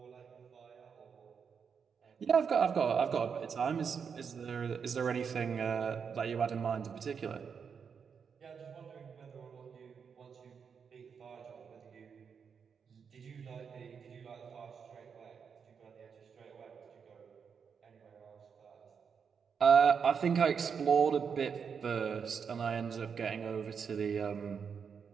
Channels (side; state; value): left; quieter; 6.5 dB